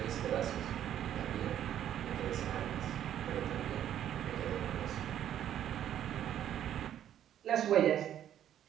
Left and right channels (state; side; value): quieter; left; 10.7 dB